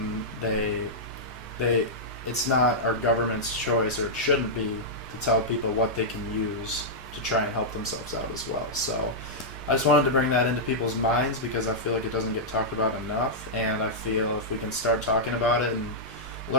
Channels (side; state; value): both; normal; correlation -0.10